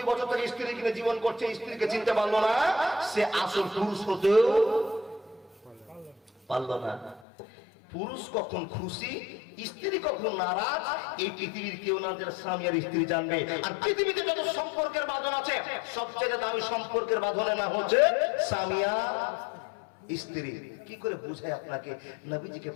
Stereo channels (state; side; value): drops out; right; at 7.2 s